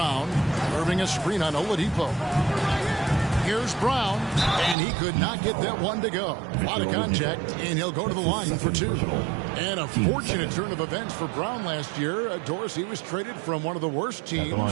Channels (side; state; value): left; drops out; at 4.8 s